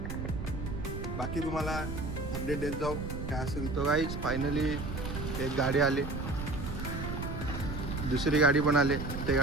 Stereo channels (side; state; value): right; noise; rumble, 5 dB below the sound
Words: तुम्हाला अपडेट देत जाऊ काय असेल तो. गाईच फायनली एक गाडी आली, दुसरी गाडी पण आली. त्या